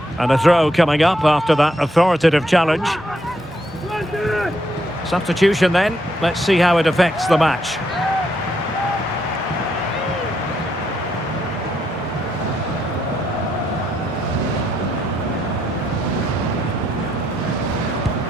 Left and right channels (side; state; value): both; normal; correlation 0.76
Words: And a throw coming up after that authoritative challenge. Substitution then. Let's see how it affects the match.